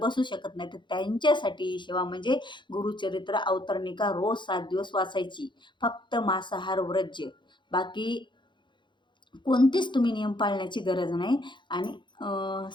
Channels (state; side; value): late; right; 0.23 ms